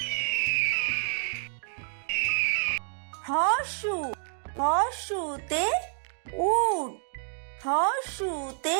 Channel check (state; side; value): silent; left; 59 dB below the other